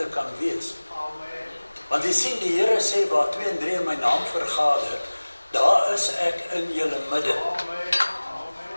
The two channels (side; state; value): both; inverted; correlation -1.00